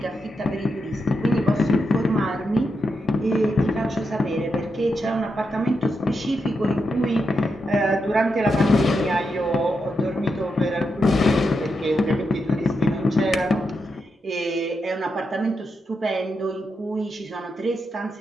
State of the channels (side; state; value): both; normal; correlation 0.84